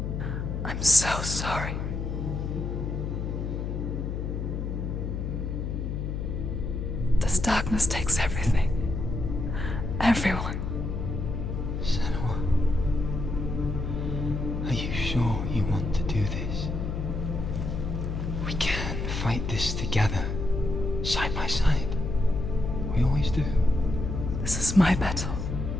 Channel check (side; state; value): left; noise; hum, 3 dB below the sound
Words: I'm so sorry. This darkness takes everything. Everyone. Senua, are you sure you want to do this? We can fight this together, side by side. We always do. This is my battle.